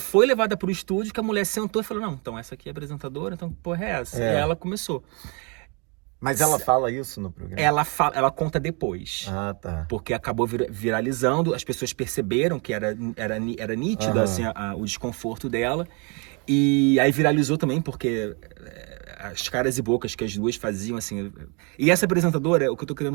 levada pro estúdio, que a mulher sentou e falou, não, então essa aqui é apresentadora, então que porra é essa? E aí ela começou. Mas ela fala isso no programa? Ela conta depois. Tá. Porque acabou viralizando, as pessoas perceberam que era nítido assim, o desconforto dela. E aí viralizou também, porque as caras e bocas que as duas faziam, assim... E essa apresentadora, o que eu tô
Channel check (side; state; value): left; quieter; 33.2 dB